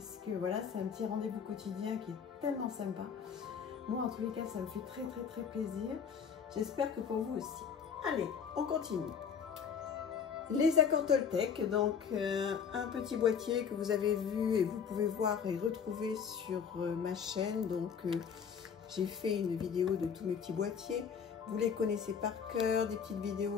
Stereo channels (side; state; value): right; quieter; 6.9 dB